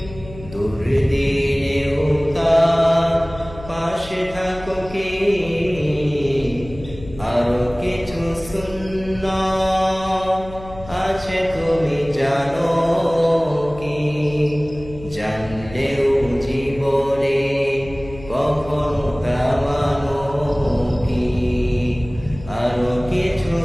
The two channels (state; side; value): noise; left; hum, 16 dB below the sound